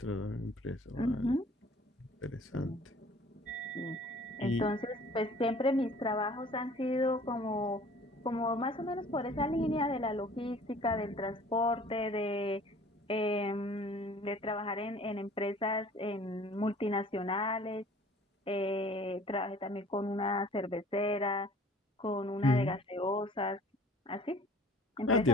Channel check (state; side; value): normal; both; correlation 0.50